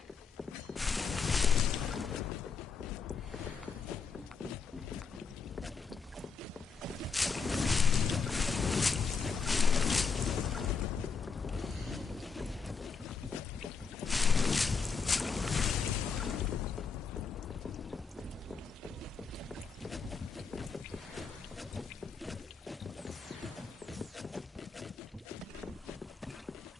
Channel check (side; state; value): right; quieter; 5.3 dB